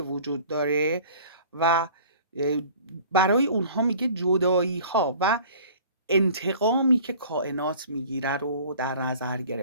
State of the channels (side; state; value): both; inverted; correlation -0.47